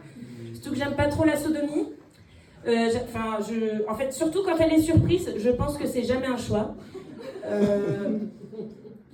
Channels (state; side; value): identical; both; correlation 1.00